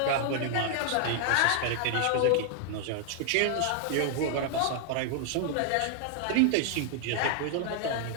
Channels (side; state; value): both; different; correlation 0.00